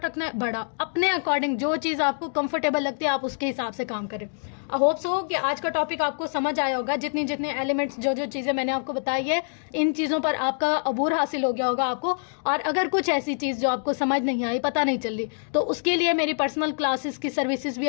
रखना है बड़ा, अपने अकॉर्डिंग जो चीज़ आपको कंफर्टेबल लगती है आप उसके हिसाब से काम करें। आई होप सो कि आज का टॉपिक आपको समझ आया होगा। जितने एलिमेंट्स, जो चीज़ें मैंने आपको बताई है, इन चीज़ों पर आपका अबूर हासिल हो गया होगा आपको। और अगर कुछ ऐसी चीज़ जो आपको समझ नहीं आई, पता नहीं चल रही, तो उसके लिए मेरी पर्सनल क्लासेस की सर्विसेज भी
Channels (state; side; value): silent; right; digital silence